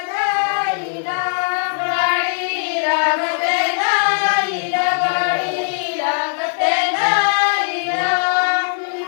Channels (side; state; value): right; silent; digital silence